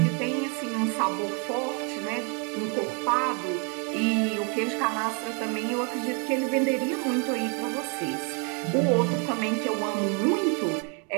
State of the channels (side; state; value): left; quieter; 36.2 dB